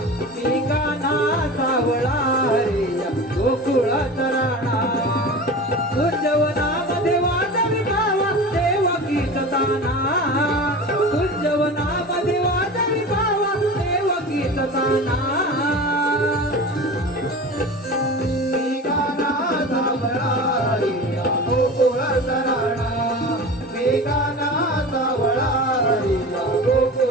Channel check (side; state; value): both; normal; correlation 0.33